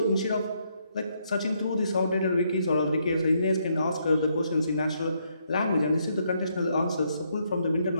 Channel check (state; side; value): inverted; both; correlation -0.75